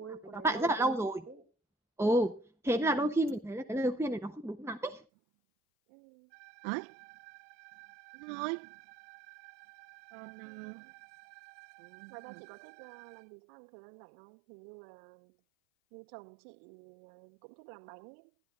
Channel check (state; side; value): drops out; left; at 5.1 s